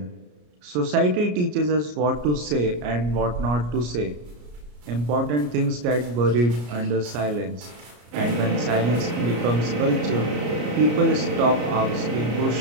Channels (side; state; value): left; late; 34 ms